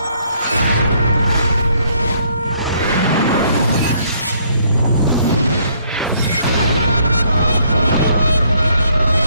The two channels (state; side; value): inverted; both; correlation -0.67